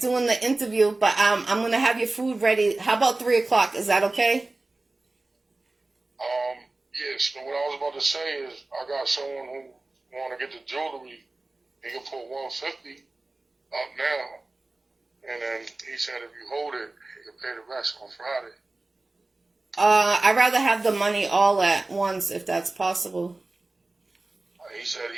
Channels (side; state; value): left; quieter; 3.1 dB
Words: the interview, but I'm gonna have your food ready. How about 3 o'clock? Is that okay? Yes. So what I was about to say is, I got someone who want to get the jewelry. He can put 150 up now, and then he said if you hold it, he can pay the rest on Friday. I'd rather have the money all at once if that's possible. He said